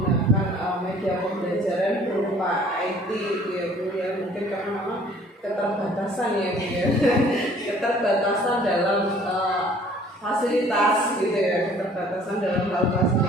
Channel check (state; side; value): normal; both; correlation 0.54